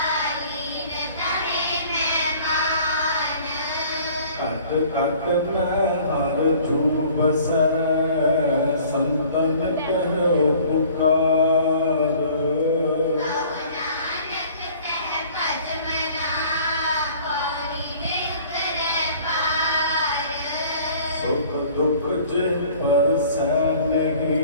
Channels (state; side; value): inverted; both; correlation -0.52